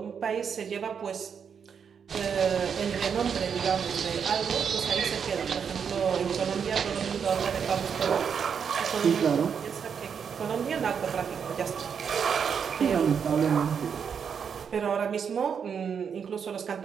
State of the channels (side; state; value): left; quieter; 7.0 dB